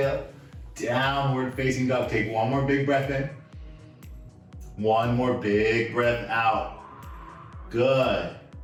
downward facing dog. Take one more big breath in. One more big breath out. Good.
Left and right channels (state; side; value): identical; both; correlation 1.00